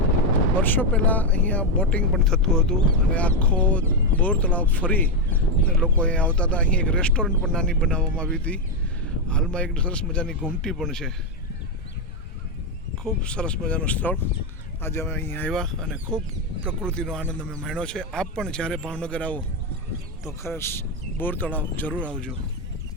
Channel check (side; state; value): both; normal; correlation 0.05